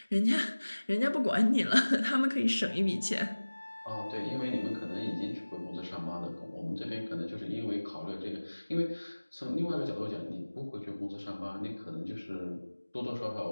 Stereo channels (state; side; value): inverted; both; correlation -1.00